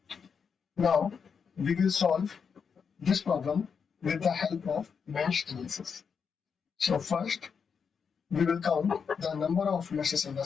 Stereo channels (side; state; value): right; quieter; 6.3 dB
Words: Now we will solve this problem with the help of mesh analysis. So first we will count the number of meshes in the